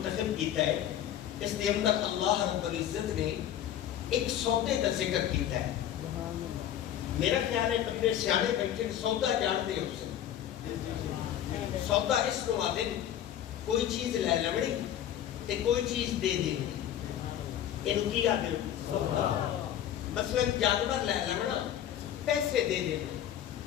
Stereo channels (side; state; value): right; quieter; 10.9 dB